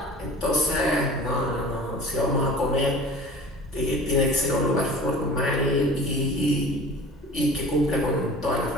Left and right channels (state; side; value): normal; both; correlation 0.41